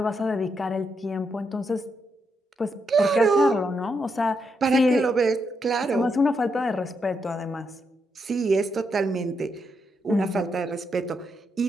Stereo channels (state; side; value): normal; both; correlation 0.80